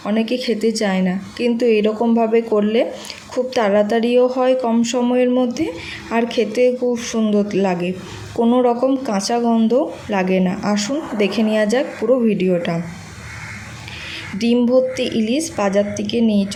অনেকে খেতে চায় না, কিন্তু এরকমভাবে করলে খুব তাড়াতাড়িও হয়, কম সময়ের মধ্যে, আর খেতে খুব সুন্দর লাগে, কোনো রকম কাঁচা গন্ধ লাগে না। আসুন দেখে নেওয়া যাক পুরো ভিডিওটা। ডিম ভর্তি ইলিশ বাজার থেকে নিয়ে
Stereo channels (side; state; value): both; identical; correlation 1.00